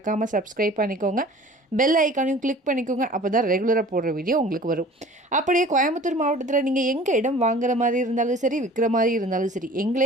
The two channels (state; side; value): normal; both; correlation 0.45